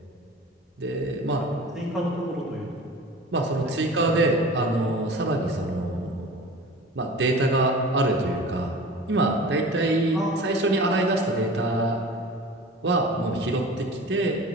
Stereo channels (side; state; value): both; normal; correlation 0.38